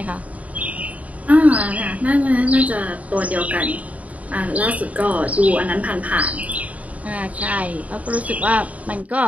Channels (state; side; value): late; left; 0.070 ms